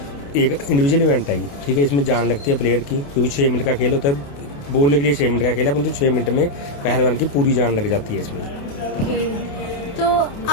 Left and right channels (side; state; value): right; late; 28 ms